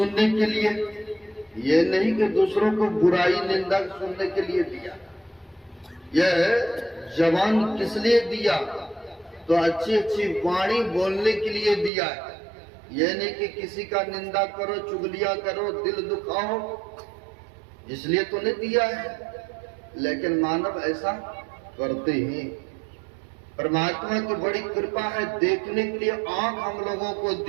के लिए, ये नहीं कि दूसरों को बुराई निंदा सुनने के लिए दिया। यह जबान किस लिए दिया? तो अच्छी अच्छी वाणी बोलने के लिए दिया है। ये नहीं कि किसी का निंदा करो, चुगलियां करो, दिल दुखाओ, इसलिए तो नहीं दिया है। लेकिन मानव ऐसा करते हैं। परमात्मा की बड़ी कृपा है, देखने के लिए आंख हम लोगों को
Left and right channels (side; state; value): left; drops out; at 11.9 s